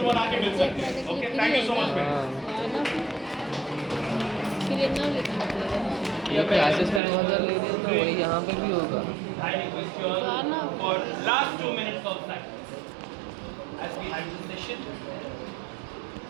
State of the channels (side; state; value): left; drops out; at 7.0 s